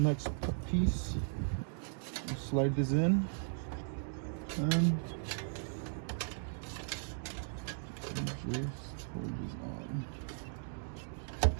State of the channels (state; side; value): silent; left; digital silence